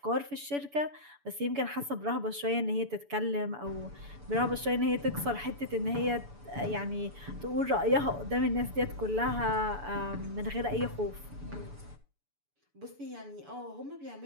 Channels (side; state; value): left; late; 7.0 ms